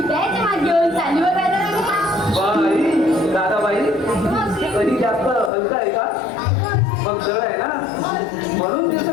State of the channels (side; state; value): right; drops out; at 5.5 s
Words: त्याचे मात घेऊन चालीवर बाई दादाबाई कधी जास्त हलका आहे का? मग जड आहे ना म्हणून